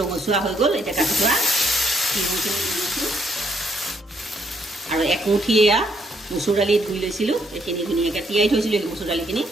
ৰঙচুৱা হৈ গ'ল, এতিয়া কাটি থোৱা তিহুখিনি দি দিছোঁ আৰু একমুঠি এয়া মচুৰ দালি ধুই লৈছিলোঁ, এইখিনি ধুনীয়াকৈ তিয়াই থৈছিলোঁ মচুৰ দালিখিনি,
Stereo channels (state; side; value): normal; both; correlation 0.71